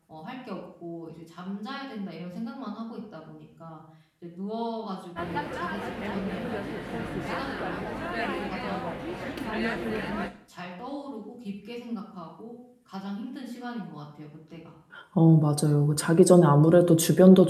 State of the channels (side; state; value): both; identical; correlation 1.00